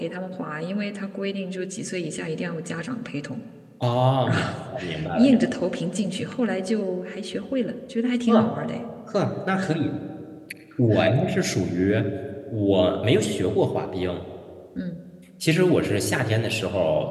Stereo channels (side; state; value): both; identical; correlation 1.00